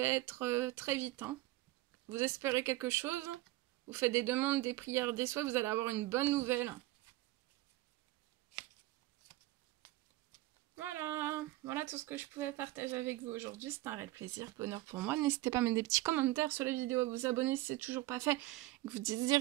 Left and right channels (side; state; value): left; quieter; 18.0 dB